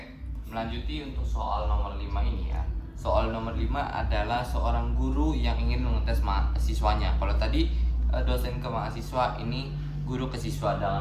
melanjuti untuk soal nomor 5 ini ya. Soal nomor 5 adalah seorang guru yang ingin mengetes mahasiswanya. Kalau tadi dosen ke mahasiswa, ini guru ke siswa.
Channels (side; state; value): both; identical; correlation 1.00